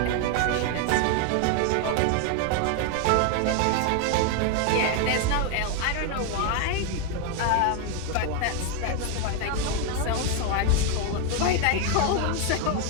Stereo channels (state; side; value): different; both; correlation 0.01